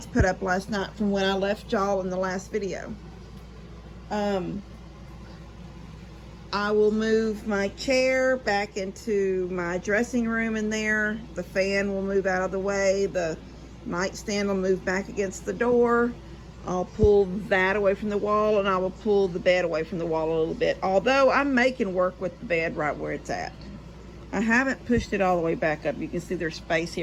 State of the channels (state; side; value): identical; both; correlation 1.00